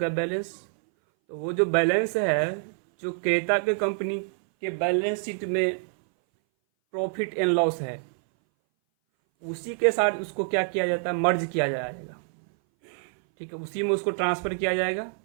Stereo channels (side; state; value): left; silent; 59 dB below the other